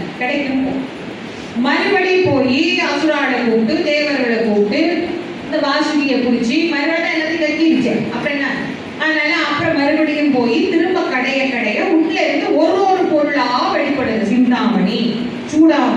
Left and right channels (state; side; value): identical; both; correlation 1.00